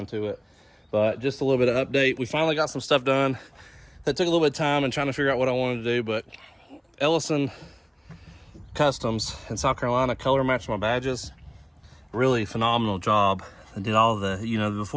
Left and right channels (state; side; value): identical; both; correlation 1.00